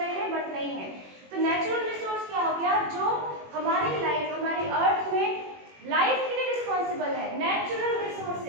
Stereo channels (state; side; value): late; left; 21 ms